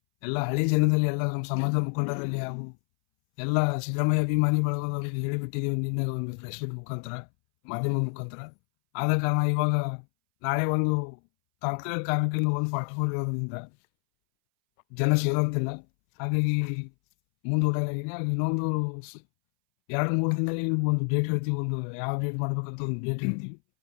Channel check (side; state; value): right; silent; 60 dB below the other